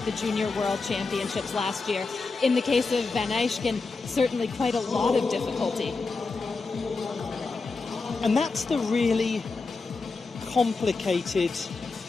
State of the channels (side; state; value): right; quieter; 4.1 dB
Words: the Junior World Championships last year. In the case of Van Eijken, certainly quite a lot of difficulty. And that's the really complicated